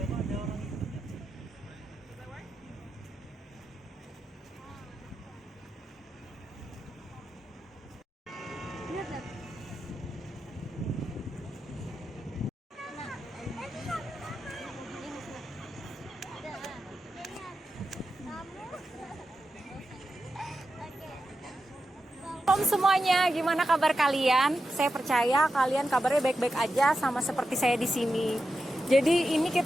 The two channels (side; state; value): both; normal; correlation 0.90